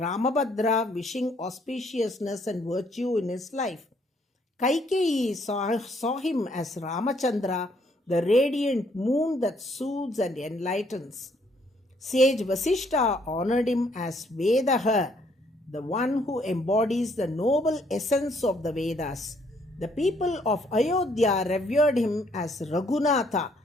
wishing auspiciousness and virtue in his life. Kaikeyi saw him as Ramachandra, the radiant moon that soothes and enlightens. Sage Vasishta honored him as Vedaha, the one who embodies the noble essence of the Vedas. The people of Ayodhya revered him as Raghunatha,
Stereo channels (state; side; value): normal; both; correlation 0.67